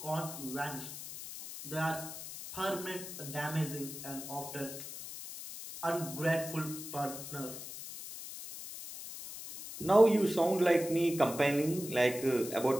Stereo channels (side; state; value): left; noise; hiss, 10 dB below the sound